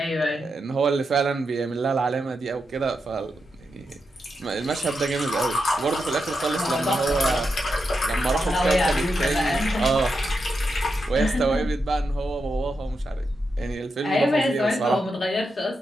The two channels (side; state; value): both; normal; correlation 0.86